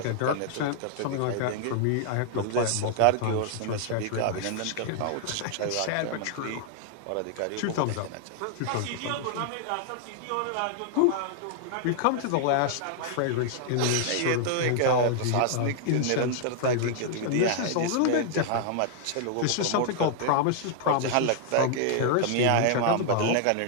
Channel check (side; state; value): both; different; correlation 0.00